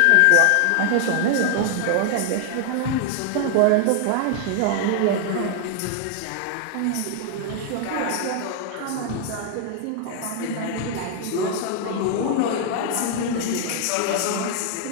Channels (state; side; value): different; both; correlation 0.00